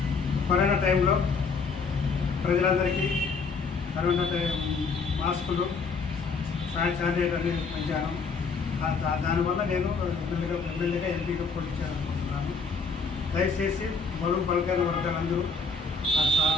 కరోనా టైంలో ప్రజలందరికీ కరోనా మాస్కులు, శానిటైజర్ అనేది పెంచాను. దానివల్ల నేను ఎమ్మెల్యేగా ఎంపీగా పోటీ చేయాలనుకుంటున్నాను. దయచేసి బడుగు బలకైన వర్గాలందరూ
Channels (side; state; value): right; quieter; 4.7 dB